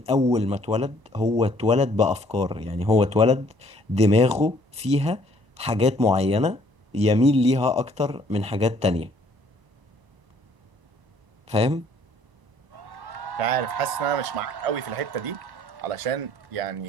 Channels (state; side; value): late; left; 1.0 ms